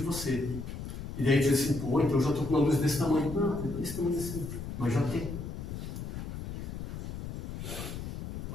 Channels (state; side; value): noise; left; rumble, 7 dB below the sound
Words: E daí diz assim, pô, então eu já estou com uma luz desse tamanho. Não, desse tamanho assim, mas já tem.